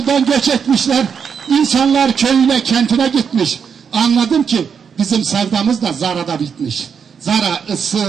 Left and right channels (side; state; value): left; quieter; 6.8 dB